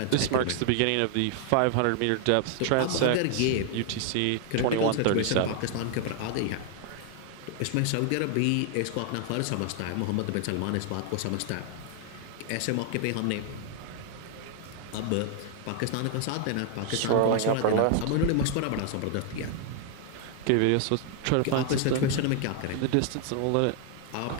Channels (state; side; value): different; both; correlation 0.00